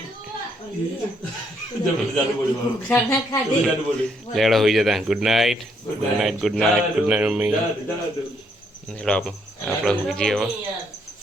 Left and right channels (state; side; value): normal; both; correlation 0.72